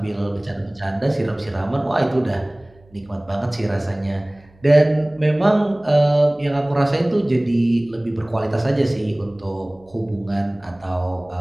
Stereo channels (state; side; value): noise; right; hum, 29 dB below the sound